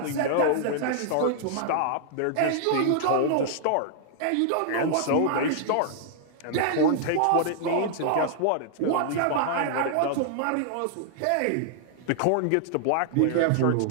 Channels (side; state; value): both; different; correlation -0.01